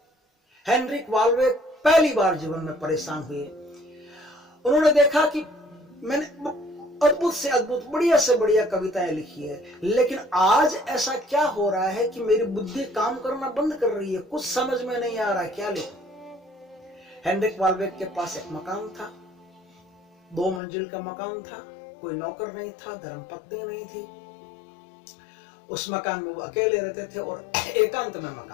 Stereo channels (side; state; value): right; drops out; at 20.6 s